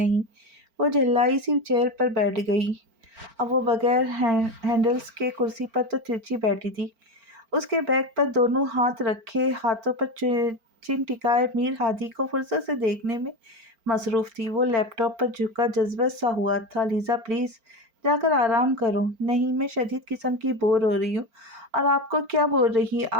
وہ جھلائی سی چیئر پر بیٹھ گئی۔ اب وہ بغیر ہینڈلز کے کرسی پر تو ترچھی بیٹھی تھی، اس کے بیک پر دونوں ہاتھ رکھے، ہاتھوں پر چن ٹکائے میر ہادی کو فرصت سے دیکھنے میں مصروف تھی۔ وہ لیپ ٹاپ پر جھکا جذبہ سا ہوا تھا۔ لیزا پلیز جا کر آرام کرو۔ نہیں، میں شدید قسم کی بور ہو رہی ہوں۔ اور آپ کو کیا بول رہی ہے؟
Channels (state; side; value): late; left; 4.4 ms